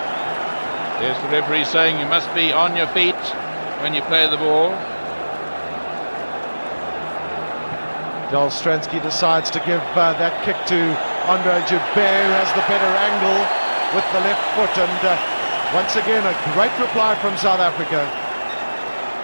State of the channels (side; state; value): both; inverted; correlation -1.00